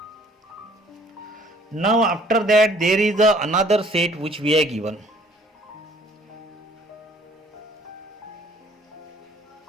Now after that there is another set which we are given.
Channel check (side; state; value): both; normal; correlation 0.57